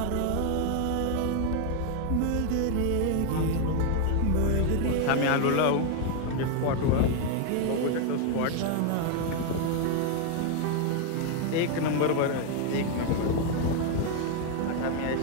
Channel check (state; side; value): different; both; correlation 0.01